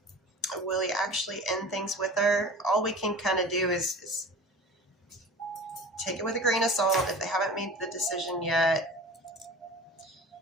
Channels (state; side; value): normal; both; correlation 0.38